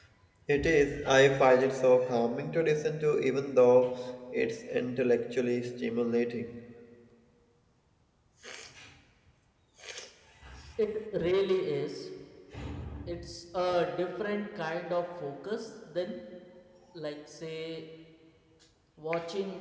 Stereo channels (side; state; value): both; identical; correlation 1.00